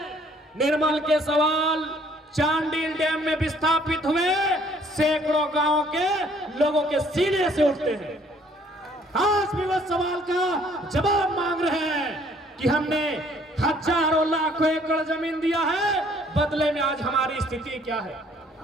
निर्मल के सवाल चांडिल डैम में विस्थापित हुए सैकड़ों गांवों के लोगों के सीने से उठते हैं। आज भी वह सवाल का जवाब मांग रहे हैं कि हमने हजारों लाखों एकड़ जमीन दिया है, बदले में आज हमारी स्थिति क्या है।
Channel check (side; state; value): both; normal; correlation 0.61